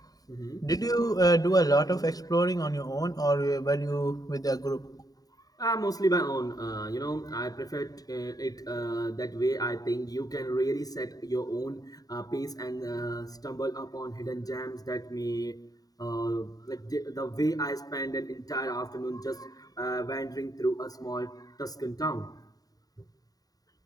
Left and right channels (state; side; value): late; right; 0.18 ms